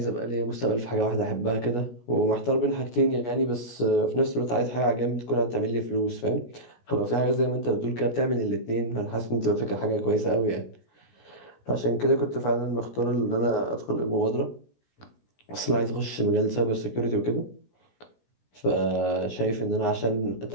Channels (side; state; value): right; late; 16 ms